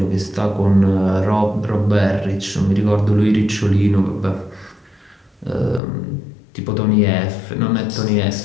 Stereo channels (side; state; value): right; drops out; at 5.8 s